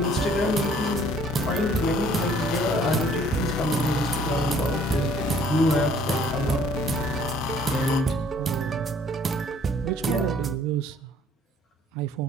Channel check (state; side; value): normal; both; correlation 0.59